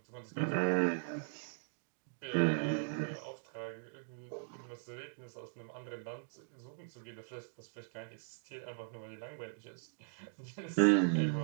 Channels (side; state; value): left; silent; digital silence